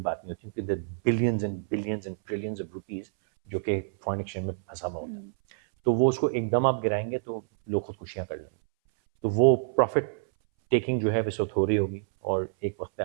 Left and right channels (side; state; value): left; silent; 60 dB below the other